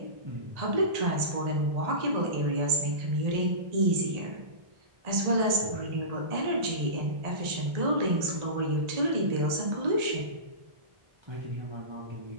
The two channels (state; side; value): late; left; 1.8 ms